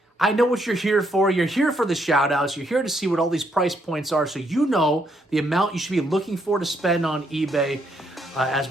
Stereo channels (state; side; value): normal; both; correlation 0.74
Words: I know what you're here for. You're here for the shout outs. You're here to see what all these price points are so you know the amount you should be looking for to spend on eBay as